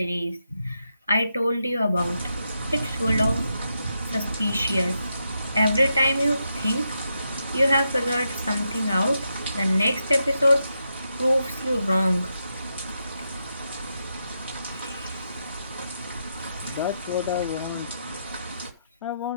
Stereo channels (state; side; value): inverted; both; correlation -0.84